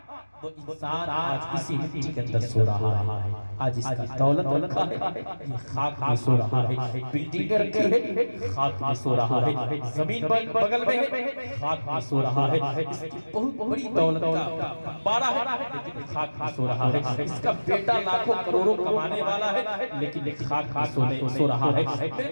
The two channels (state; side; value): inverted; both; correlation -1.00